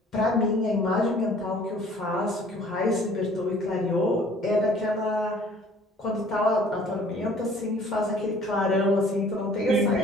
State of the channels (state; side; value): normal; both; correlation 0.53